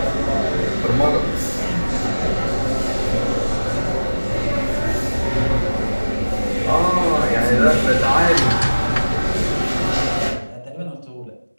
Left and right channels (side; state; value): both; inverted; correlation -1.00